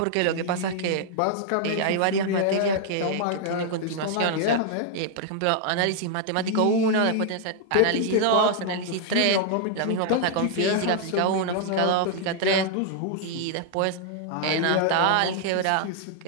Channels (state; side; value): different; both; correlation -0.01